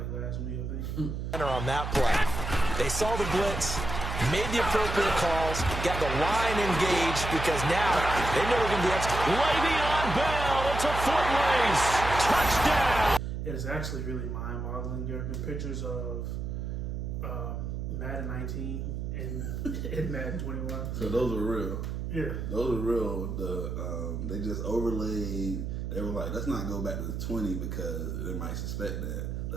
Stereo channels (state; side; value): noise; right; hum, 4 dB below the sound